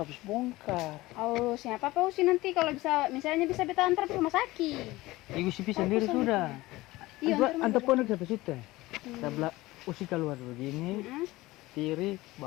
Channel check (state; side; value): quieter; right; 19.1 dB